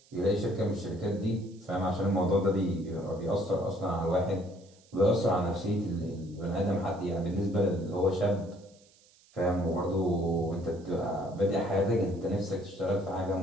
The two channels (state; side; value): noise; right; hiss, 29 dB below the sound